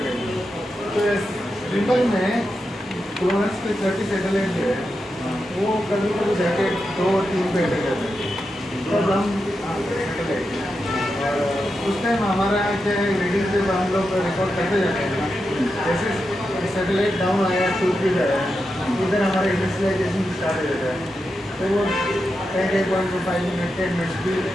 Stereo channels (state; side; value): normal; both; correlation 0.88